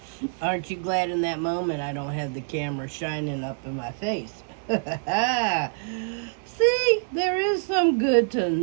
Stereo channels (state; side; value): silent; left; 61 dB below the other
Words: Aren't you glad in that moment I don't have the camera shining up in my face? See, there is some good to